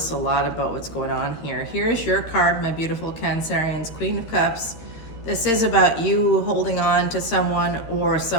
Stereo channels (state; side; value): late; right; 13 ms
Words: a lot about what's going on here. Here's your card, my beautiful Cancerians, Queen of Cups. This is about you holding on to someone or